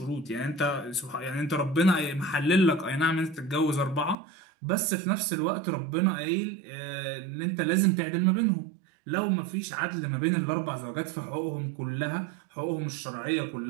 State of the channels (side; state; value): left; drops out; at 4.2 s